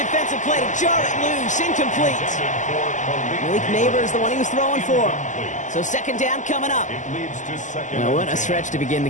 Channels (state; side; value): late; right; 0.36 ms